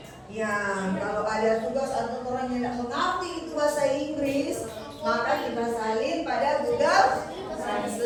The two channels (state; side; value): identical; both; correlation 1.00